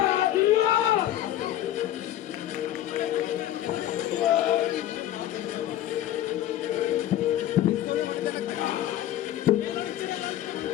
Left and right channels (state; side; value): quieter; right; 12.8 dB